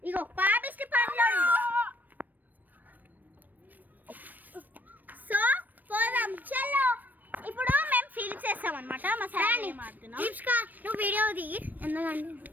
ఇగో పాపిష్టి పనులు. సో పోదాం చలో. ఇప్పుడు మేము ఫీల్ చేస్తాం అనమాట. మా సార్ మాట్లాడుతున్నాం. నువ్వు వీడియో దిగి ఎందుకండి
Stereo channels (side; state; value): left; late; 0.087 ms